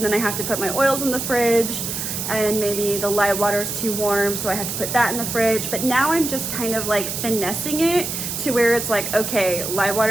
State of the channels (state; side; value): noise; right; hiss, 4 dB below the sound